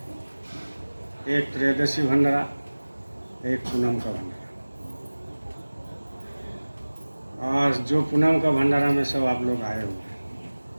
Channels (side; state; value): both; inverted; correlation -1.00